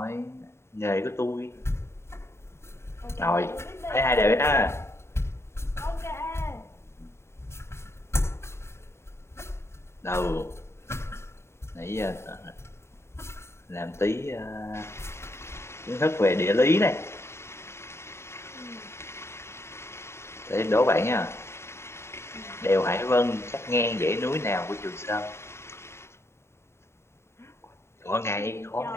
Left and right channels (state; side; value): late; right; 0.13 ms